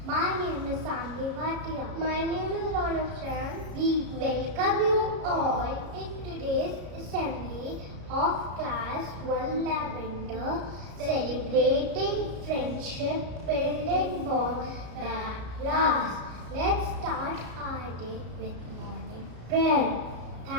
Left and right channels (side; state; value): left; late; 33 ms